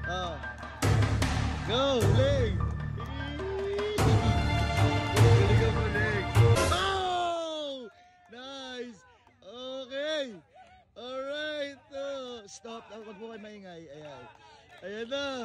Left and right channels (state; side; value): identical; both; correlation 1.00